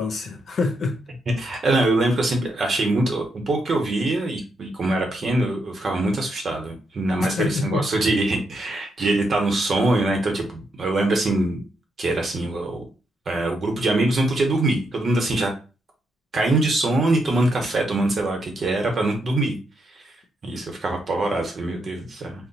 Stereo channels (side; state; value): both; normal; correlation 0.80